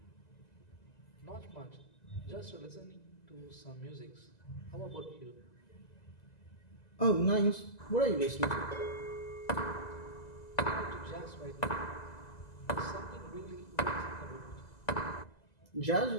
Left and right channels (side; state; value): right; late; 2.0 ms